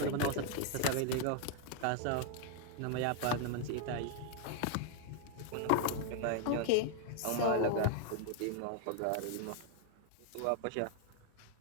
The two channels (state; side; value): different; both; correlation 0.00